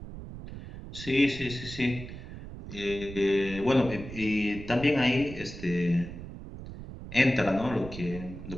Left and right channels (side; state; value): right; noise; rumble, 12 dB below the sound